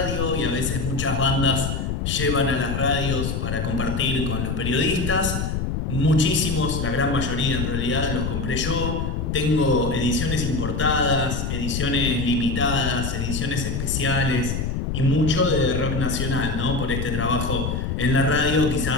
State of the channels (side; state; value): left; noise; rumble, 2 dB below the sound